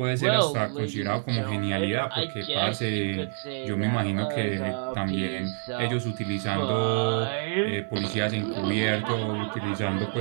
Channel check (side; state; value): left; silent; 60 dB below the other